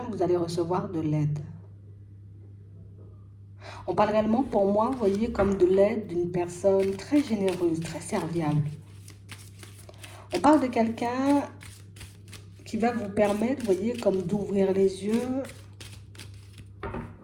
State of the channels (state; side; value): identical; both; correlation 1.00